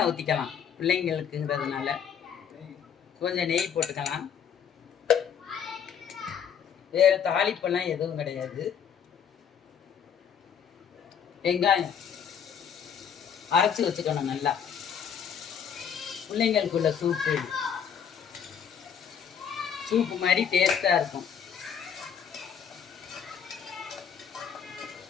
ஊற்றிக்கலாம் பிள்ளைங்களுக்குங்கிறதுனால. கொஞ்சம் நெய் போட்டுக்கலாம். வேறு தாளிப்பெல்லாம் எதுவும் கிடையாது. வெங்காயம் அரைச்சி வச்சுக்கணும் நல்லா. பிள்ளைங்களுக்குள்ள சூப்பு மாதிரி டேஸ்ட்டாக இருக்கும்.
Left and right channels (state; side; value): quieter; right; 7.8 dB